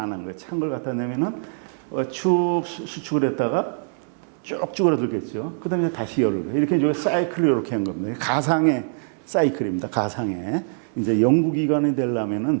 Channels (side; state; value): left; silent; 63 dB below the other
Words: 한 거예요. 찬 걸 갖다 내면은 쭉 수축을 했다가 쭉 줄어들겠죠. 그 다음에 다시 열을. 이렇게 이제 사이클을 이렇게 한 겁니다. 가상의 사이클입니다. 가상의. 이제 연구기관이